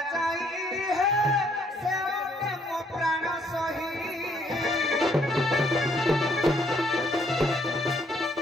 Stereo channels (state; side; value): normal; both; correlation 0.67